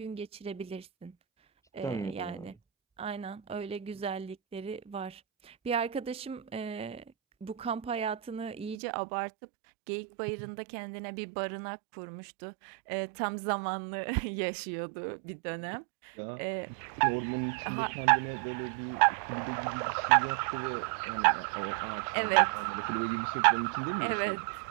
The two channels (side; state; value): left; drops out; at 8.8 s